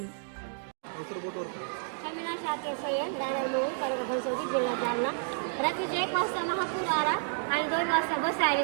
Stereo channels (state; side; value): silent; left; digital silence